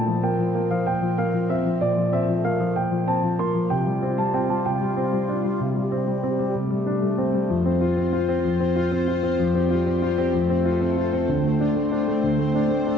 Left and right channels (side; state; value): both; normal; correlation 0.68